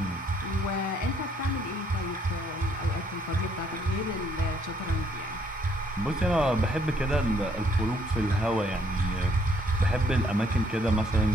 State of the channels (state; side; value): normal; both; correlation 0.67